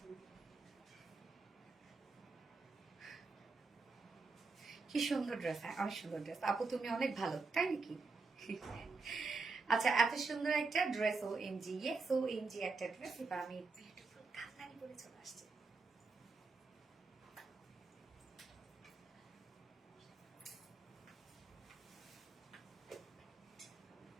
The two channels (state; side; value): quieter; left; 4.1 dB